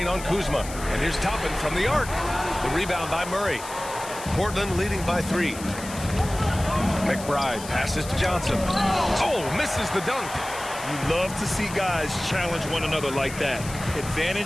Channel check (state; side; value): noise; left; hiss, 13 dB below the sound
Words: on Kuzma. And here's Toppin from the arc. The rebound by Murray. Portland leading by 3. McBride passes to Johnson. Oh, misses the dunk. You love to see guys challenge one another like that.